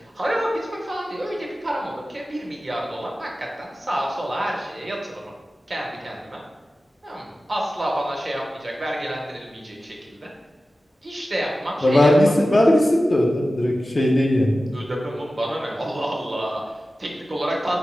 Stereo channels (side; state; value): both; normal; correlation 0.95